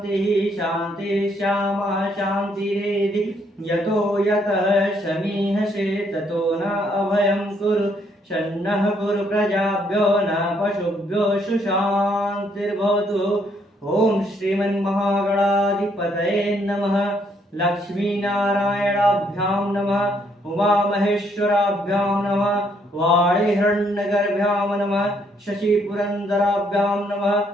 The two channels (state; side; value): normal; both; correlation 0.70